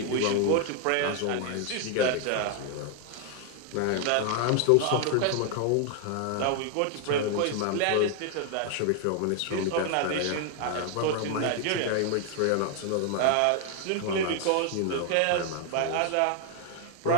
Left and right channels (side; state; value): both; different; correlation 0.00